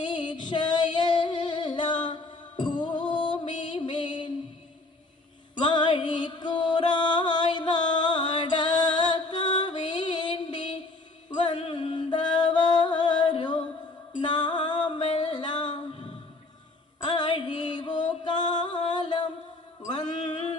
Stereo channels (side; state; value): right; quieter; 3.1 dB